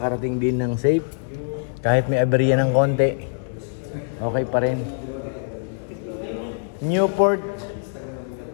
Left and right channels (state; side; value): silent; right; 63 dB below the other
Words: din ng safe. Kahit may aberya ng konti, okay pa rin. Newport